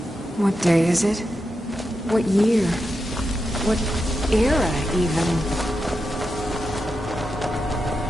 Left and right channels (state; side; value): normal; both; correlation 0.88